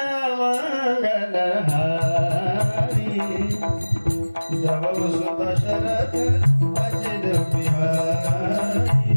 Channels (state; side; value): inverted; both; correlation -1.00